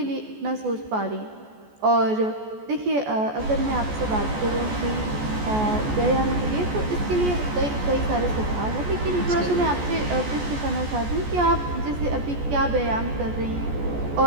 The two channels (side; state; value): left; late; 14 ms